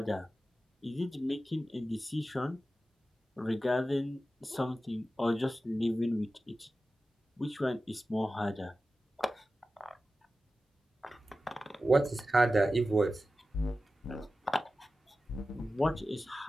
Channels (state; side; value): normal; both; correlation 0.94